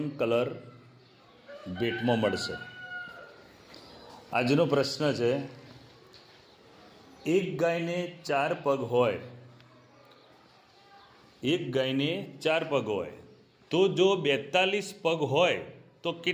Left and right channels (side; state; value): both; identical; correlation 1.00